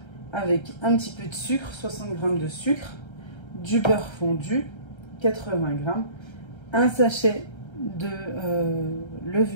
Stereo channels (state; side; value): late; right; 1.3 ms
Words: avec un petit peu de sucre, 60 g de sucre, du beurre fondu, 80 g, un sachet de